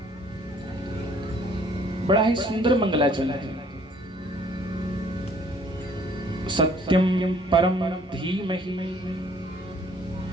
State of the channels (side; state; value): both; normal; correlation 0.59